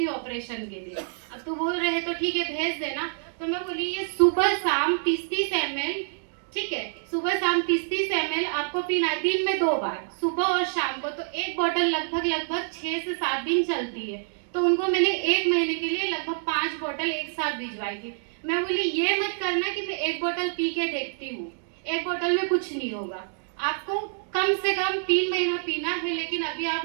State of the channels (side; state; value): left; silent; digital silence